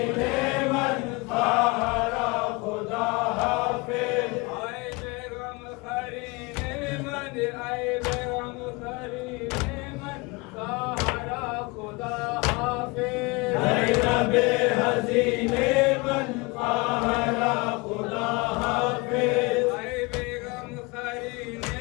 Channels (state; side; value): quieter; right; 26.5 dB